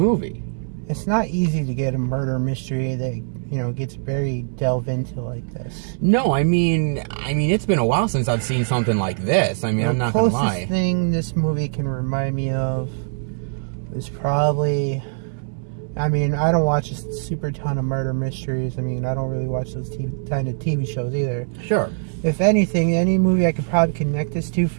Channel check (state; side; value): silent; left; digital silence